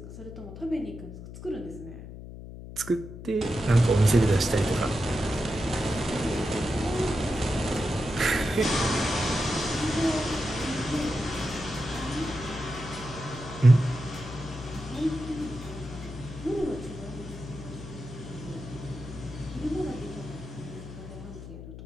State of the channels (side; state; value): left; noise; hum, 12 dB below the sound